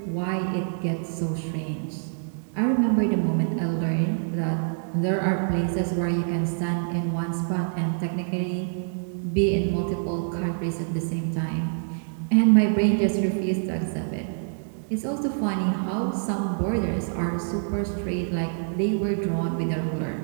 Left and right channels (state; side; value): silent; left; digital silence